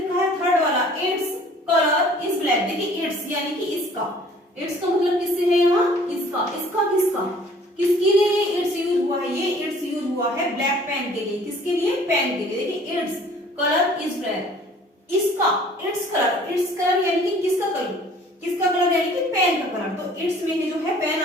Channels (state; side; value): normal; both; correlation 0.53